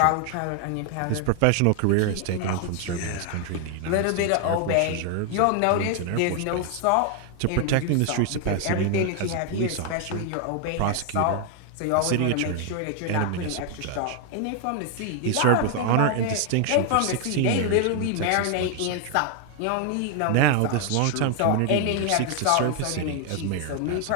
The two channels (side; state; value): both; different; correlation 0.00